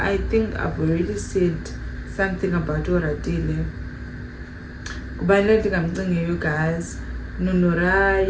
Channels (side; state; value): both; identical; correlation 1.00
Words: think I've already said something about Uratile. You guys,